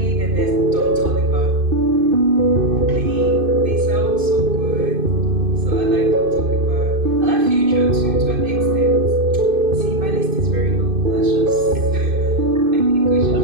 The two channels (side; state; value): left; late; 2.5 ms